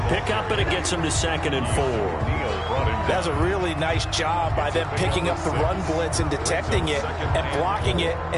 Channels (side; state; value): both; identical; correlation 1.00